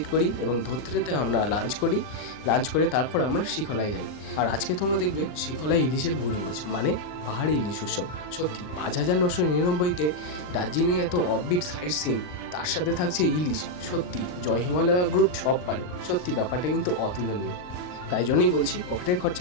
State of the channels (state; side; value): late; right; 39 ms